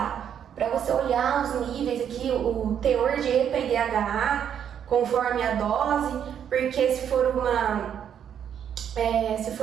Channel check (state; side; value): quieter; left; 8.8 dB